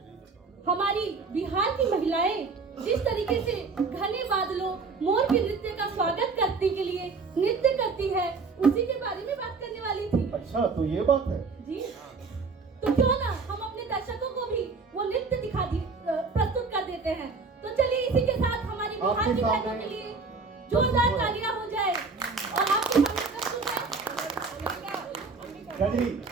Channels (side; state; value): left; quieter; 4.4 dB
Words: हमारी बिहार की महिलाएं जिस तरीके से घने बादलों मोर के नृत्य का स्वागत करने के लिए नृत्य करती है, उसी के बारे में बात करने वाली थी। अच्छा, तो ये बात है जी। तो क्यों ना हम अपने दर्शकों को भी वो नृत्य प्रस्तुत कर देते हैं। तो चलिए इसी के साथ हमारी बिहार की बहनों के लिए जोरदार तालियां हो जाए। और आपके सामने प्रस्तुत है गजरी